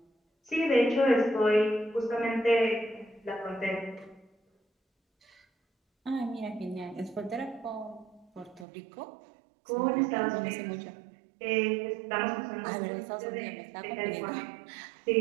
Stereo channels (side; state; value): left; drops out; at 8.7 s